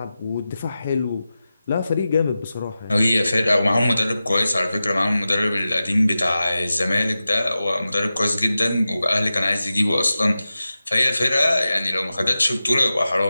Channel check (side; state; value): both; inverted; correlation -0.94